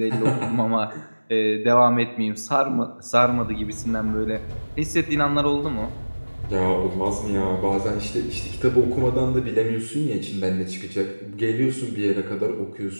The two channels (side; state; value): both; inverted; correlation -1.00